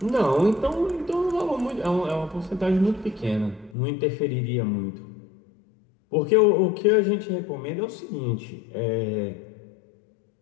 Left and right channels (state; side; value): drops out; right; at 3.8 s